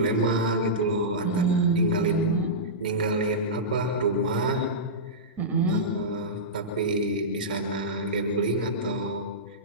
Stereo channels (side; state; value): both; normal; correlation -0.15